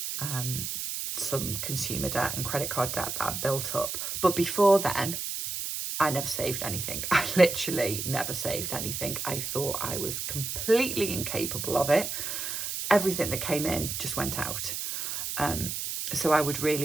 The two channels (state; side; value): noise; right; hiss, 4 dB below the sound